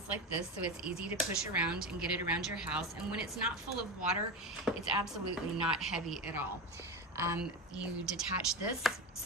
like this, so it's easy to push around and get it around your house. And when it's not full of water, it's absolutely not heavy at all. You detach this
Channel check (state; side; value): normal; both; correlation 0.21